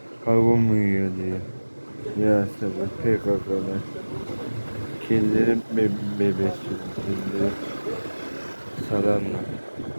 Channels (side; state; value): both; inverted; correlation -1.00